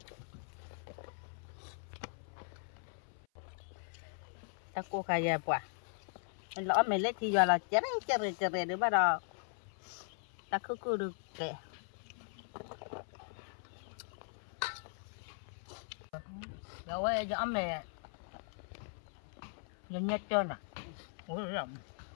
ta cô khai ra quả lỡ mày lấy thì giờ là chén chè được bắt đầu ta cứ được kệ rồi giờ ông này nhìn nhất trơn à ôi rộng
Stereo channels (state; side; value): silent; right; 52 dB below the other